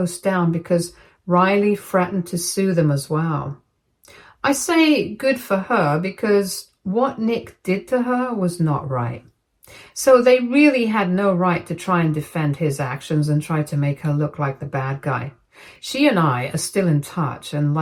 down because Riley threatened to sue them as well. I say good for her because what Nick did to her was not right. So they really had no right to try and defend his actions and try to make her look like the bad guy. She and I are still in touch, and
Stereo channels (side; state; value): both; identical; correlation 1.00